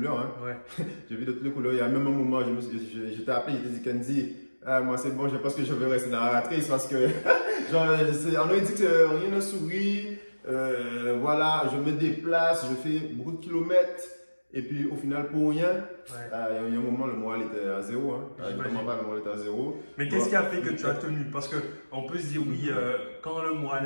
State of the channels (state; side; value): inverted; both; correlation -1.00